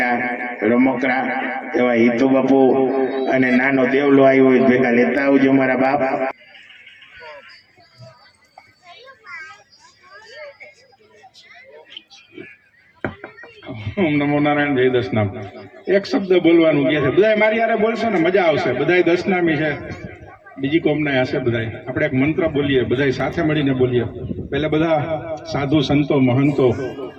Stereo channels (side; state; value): both; identical; correlation 1.00